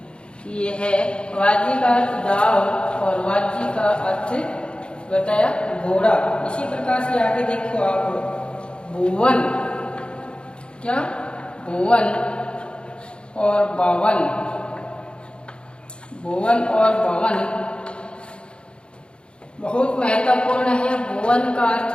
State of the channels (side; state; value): right; late; 0.055 ms